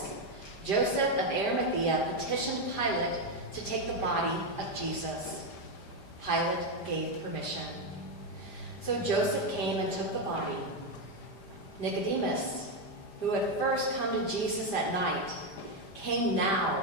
Joseph of Arimathea petitioned Pilate to take the body of Jesus. Pilate gave permission. So Joseph came and took the body. Nicodemus, who had first come to Jesus at night, came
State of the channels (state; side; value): late; right; 5.0 ms